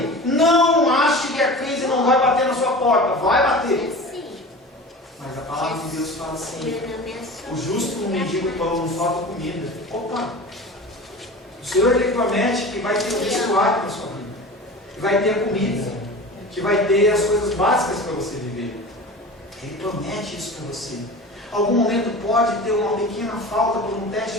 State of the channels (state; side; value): normal; both; correlation 0.35